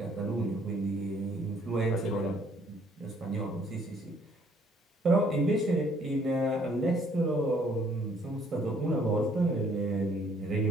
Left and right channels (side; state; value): both; normal; correlation 0.63